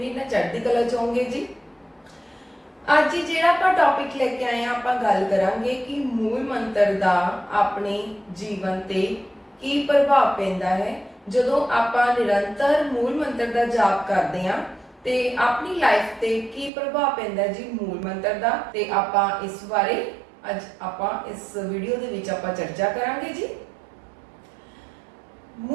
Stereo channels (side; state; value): left; drops out; at 16.7 s